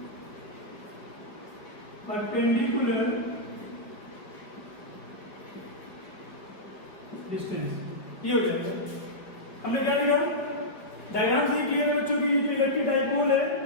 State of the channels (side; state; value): right; late; 4.9 ms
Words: perpendicular distance, ये हो जाएगा। हमने क्या लिया, डायग्राम से क्लियर है बच्चों की, जो इलेक्ट्रिक डाइपोल है